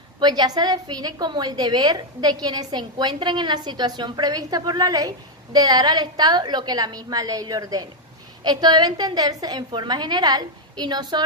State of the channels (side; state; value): both; normal; correlation 0.02